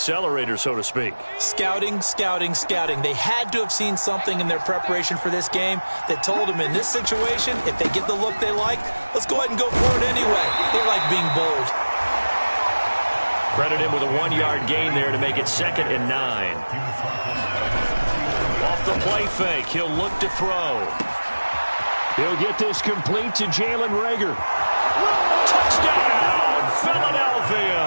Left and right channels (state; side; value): inverted; both; correlation -1.00